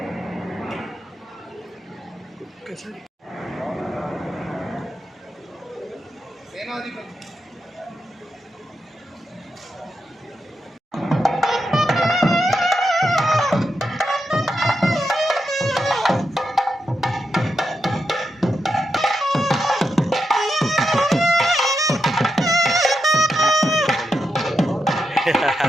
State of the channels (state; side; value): normal; both; correlation 0.86